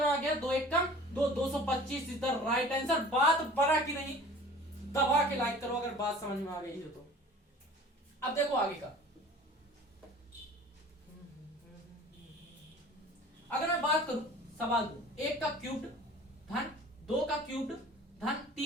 आ गया 2 1 कम 2, 225 इज द राइट आंसर। बात बड़ा की नहीं, दबा के लाइक करो अगर बात समझ में आ गई हो तो। अब देखो आगे का, अगर मैं बात करूं सवाल 2, 1 का क्यूब्ड धन 2 का क्यूब्ड धन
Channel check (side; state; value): both; normal; correlation 0.45